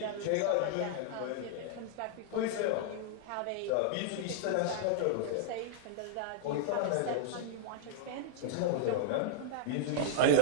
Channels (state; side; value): different; both; correlation -0.01